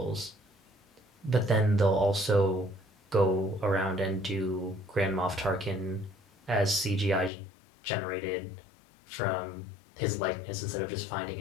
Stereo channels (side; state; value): right; drops out; at 7.3 s